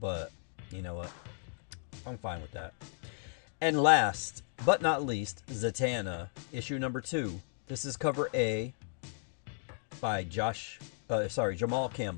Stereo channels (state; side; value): silent; right; 55 dB below the other